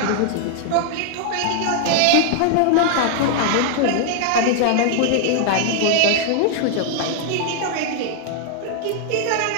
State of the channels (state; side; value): different; both; correlation 0.00